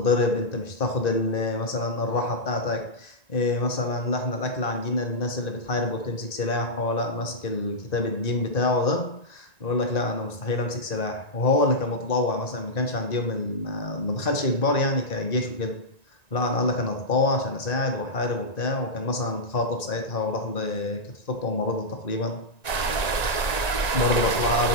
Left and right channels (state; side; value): late; right; 1.9 ms